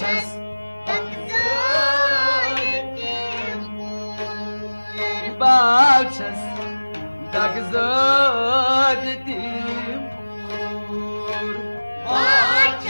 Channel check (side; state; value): both; inverted; correlation -1.00